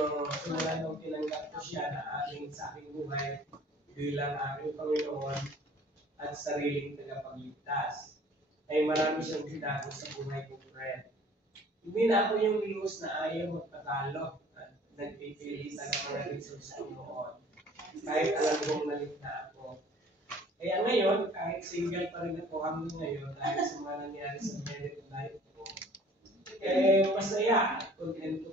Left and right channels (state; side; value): normal; both; correlation 0.52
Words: nung tinanggap ko siya na sa aking buhay bilang aking Panginoon at sariling tagapagligtas. Ay marami siyang binago sa buhay ko, friend. Hindi na ako yung Luz na ayaw magpatalo at nagpipilitan ng mga resources ko noon. Kahit alam kong malit na ako. Kaya ngayon, kahit single pa rin ako hanggang ngayon dahil sa mga nangyari sa married life ko, masaya at contento